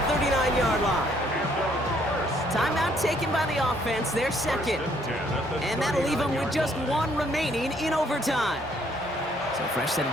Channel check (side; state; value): both; normal; correlation 0.66